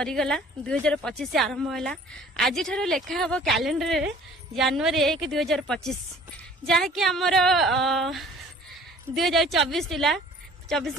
2025 आरंभ है। आज ठार लेखा हम कैलेंडर रे जनवरी 1 2025 जहाँकि आमर 2024 थिला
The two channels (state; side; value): normal; both; correlation 0.51